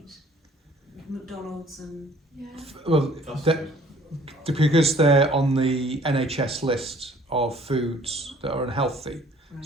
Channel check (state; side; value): normal; both; correlation 0.55